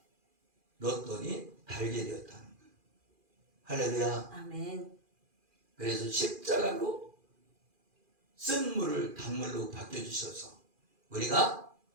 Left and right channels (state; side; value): late; left; 2.4 ms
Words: 넣었더니 달게 되었다는 거예요. 할렐루야. 아멘. 그래서 십자가로 쓴 물을 단물로 바뀌어주셔서 우리가